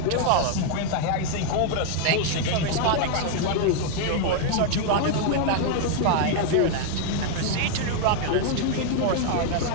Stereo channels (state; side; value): different; both; correlation 0.00